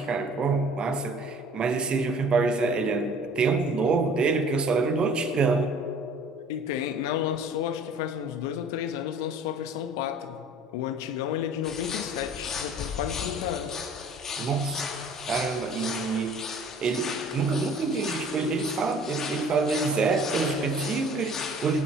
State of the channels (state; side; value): normal; both; correlation 0.49